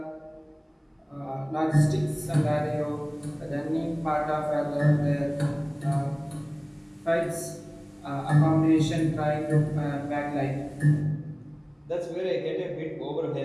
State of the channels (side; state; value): both; identical; correlation 1.00